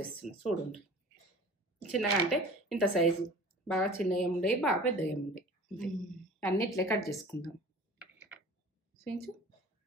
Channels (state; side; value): normal; both; correlation 0.43